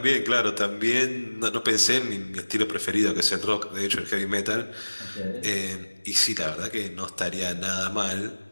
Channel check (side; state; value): both; inverted; correlation -1.00